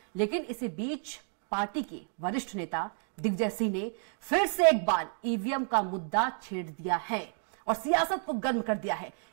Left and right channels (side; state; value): left; silent; 57 dB below the other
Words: लेकिन इसी बीच पार्टी के वरिष्ठ नेता दिग्विजय सिंह ने फिर से एक बार ईवीएम का मुद्दा छेड़ दिया है और सियासत को गर्म कर दिया है।